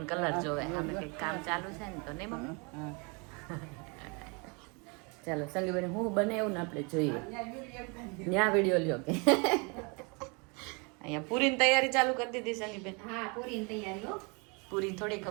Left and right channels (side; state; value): left; quieter; 31.8 dB